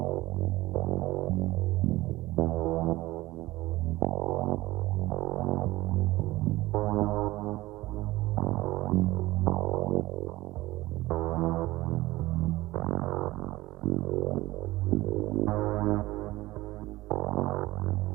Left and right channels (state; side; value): quieter; left; 18.4 dB